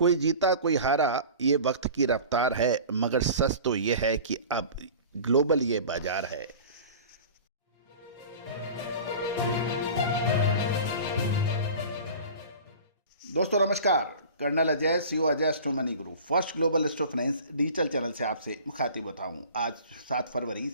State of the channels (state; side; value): inverted; both; correlation -0.39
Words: जीता कोई हारा, ये वक्त की रफ्तार है, मगर सच तो ये है कि अब ग्लोबल ये बाजार है। दोस्तों नमस्कार, कर्नल अजय, सीईओ अजय स्टो मनी ग्रुप, फर्स्ट ग्लोबल स्टो फाइनेंस डिजिटल चैनल से आपसे मुखातिब होता हूँ। आज 7 फरवरी